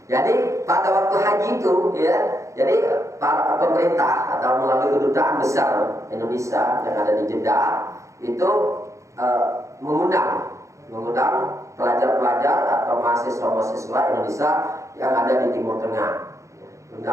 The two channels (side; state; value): left; late; 0.15 ms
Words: Jadi pada waktu haji itu ya, jadi para pemerintah atau melalui Kedutaan Besar Indonesia yang ada di Jeddah itu mengundang pelajar-pelajar atau mahasiswa-mahasiswa Indonesia yang ada di Timur Tengah